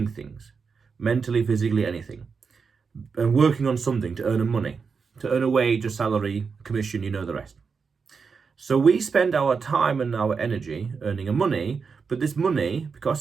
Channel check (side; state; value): left; quieter; 5.4 dB